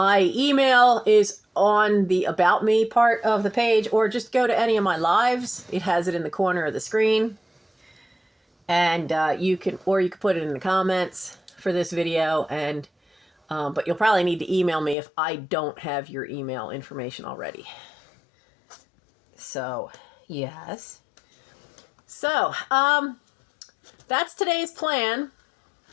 email is on the About Me part of the page, or just go to any of my lives. It has it in the corner of the screen. And you can put it in the comments for this video. And but you'll probably need to email me if I don't have your email information already. So, yes. So, that's today's plan.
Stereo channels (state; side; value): drops out; right; at 15.0 s